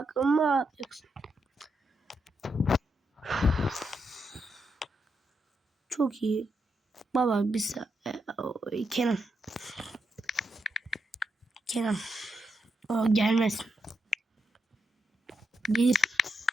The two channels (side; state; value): both; normal; correlation 0.83